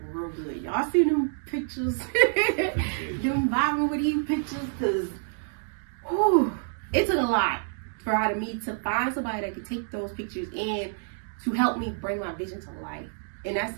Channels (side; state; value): left; silent; digital silence